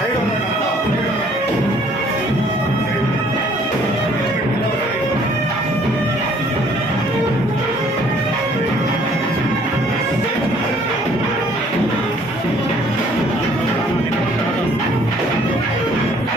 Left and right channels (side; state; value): both; normal; correlation 0.59